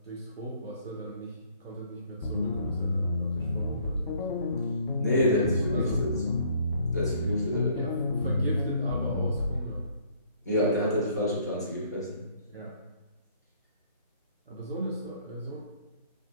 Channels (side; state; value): both; inverted; correlation -0.61